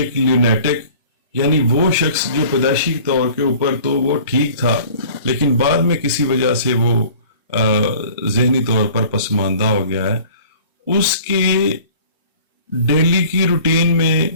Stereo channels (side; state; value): both; inverted; correlation -0.47